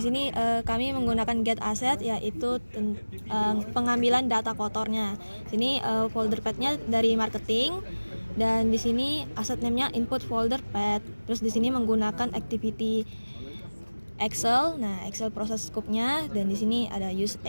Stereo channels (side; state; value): both; inverted; correlation -1.00